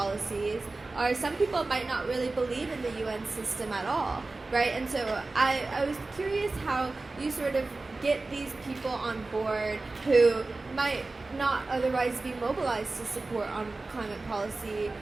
or some people might not really believe in the UN system at all, right? And so I was curious how you sort of get these people on board who might not otherwise be mobilized to support on climate policy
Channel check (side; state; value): left; quieter; 3.4 dB